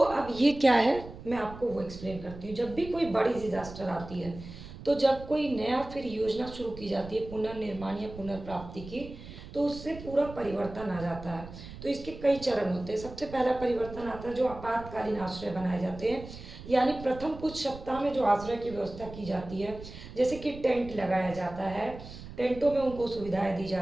ये क्या है मैं आपको वो एक्सप्लेन करती हूँ। जब भी कोई बड़ी डिजास्टर आती है तो जब कोई नया फिर योजना शुरू की जाती है पुनर्निर्माण या पुनर्प्राप्ति की, तो उससे पूरा परिवर्तन आ जाता है। तो इसके कई चरण होते हैं। सबसे पहला परिवर्तन आता है जो आपातकालीन आश्रय बनाए जाते हैं, यानी प्रथम कुछ सप्ताह में जो आश्रय की व्यवस्था की जाती है, जैसे कि टेंट लगाया जाता है, टेंटों में उनको सुविधाएं दी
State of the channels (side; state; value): right; noise; rumble, 14 dB below the sound